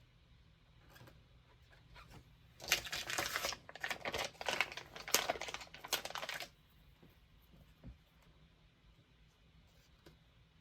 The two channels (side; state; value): both; identical; correlation 1.00